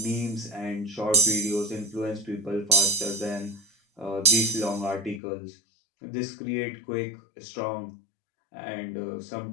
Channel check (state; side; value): drops out; right; at 5.2 s